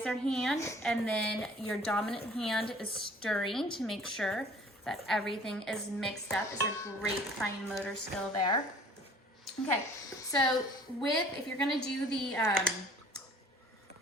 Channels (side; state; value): both; normal; correlation 0.51